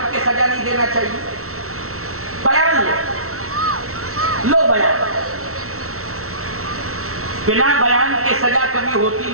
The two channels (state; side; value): late; left; 0.63 ms